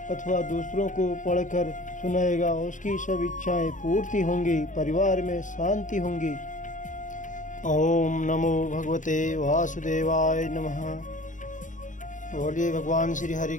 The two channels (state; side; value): late; right; 0.37 ms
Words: अथवा दूसरों को पढ़कर सुनाएगा, उसकी सब इच्छाएं पूर्ति होंगी, परिवार में शांति होंगी। ओम नमो भगवते वासुदेवाय नमः। बोलिए भगवान श्री हरि